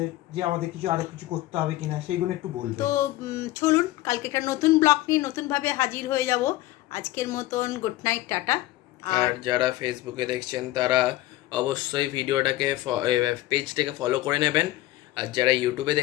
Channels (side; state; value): right; quieter; 16.6 dB